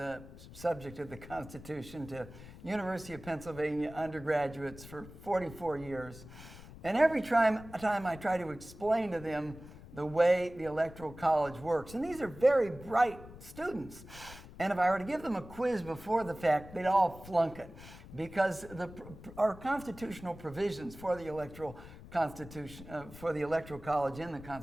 subject of the Constitution to University of Pennsylvania undergraduates for 44 years. And every time I try to explain to them the way the Electoral College works, and these are very bright students, and if I were to give them a quiz before the fact, they'd all flunk it, because our constitutional provisions for the Electoral College in the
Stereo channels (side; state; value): left; noise; rumble, 16 dB below the sound